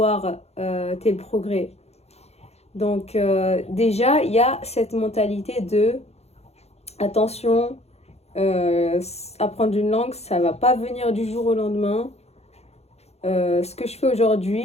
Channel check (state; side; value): late; right; 0.31 ms